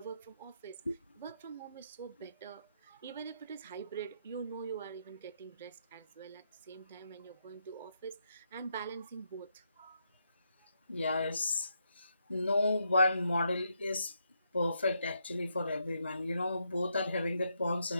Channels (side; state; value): both; inverted; correlation -0.80